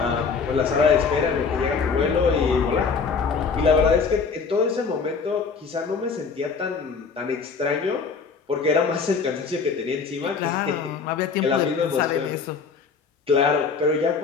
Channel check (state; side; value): quieter; right; 5.3 dB